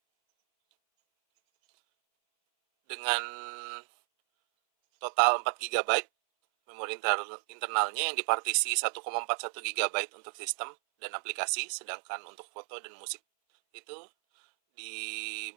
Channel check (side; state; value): left; silent; 56 dB below the other